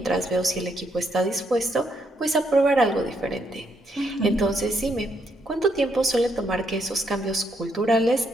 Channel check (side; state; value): both; normal; correlation 0.75